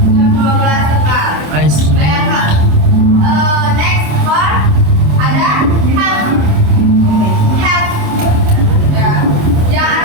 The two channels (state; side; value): late; left; 27 ms